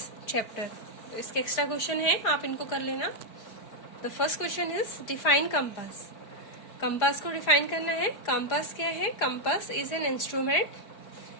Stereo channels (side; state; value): right; late; 4.9 ms